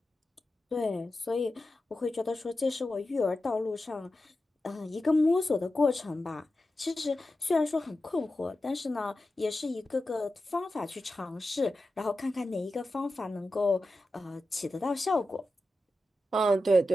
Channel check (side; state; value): both; normal; correlation 0.92